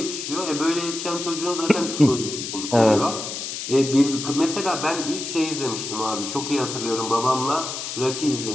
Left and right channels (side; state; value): left; noise; hiss, 6 dB below the sound